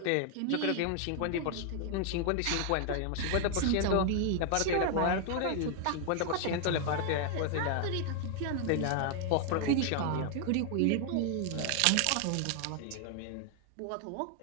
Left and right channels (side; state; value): both; different; correlation 0.00